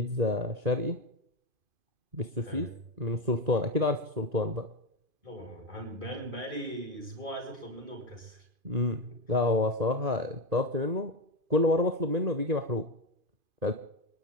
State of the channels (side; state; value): left; late; 2.5 ms